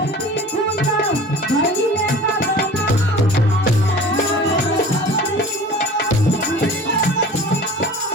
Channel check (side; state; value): both; normal; correlation 0.41